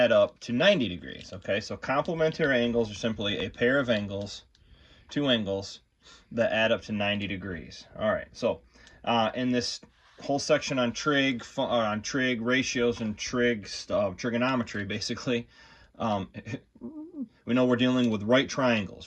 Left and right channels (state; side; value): identical; both; correlation 1.00